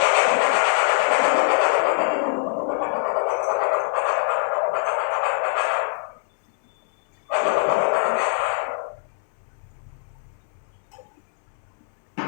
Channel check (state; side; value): silent; right; 63 dB below the other